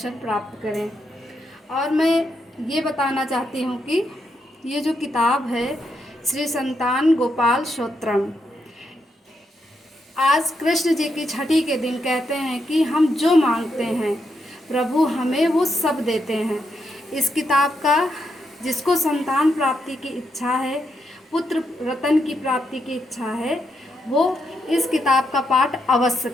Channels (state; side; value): normal; both; correlation 0.81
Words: प्राप्त करें। और मैं ये बताना चाहती हूँ कि ये जो किताब है श्री संतान गोपाल स्तोत्रम, आज कृष्ण जी की छठी के दिन कहते हैं कि हम जो मांगते हैं प्रभु हमें वो सब देते हैं। इस किताब का जिसको संतान प्राप्ति की इच्छा है, पुत्र रतन की प्राप्ति की इच्छा है, वो इस किताब का पाठ अवश्य